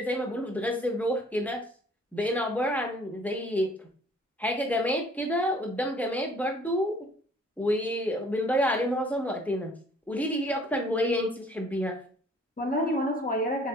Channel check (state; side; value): normal; both; correlation 0.56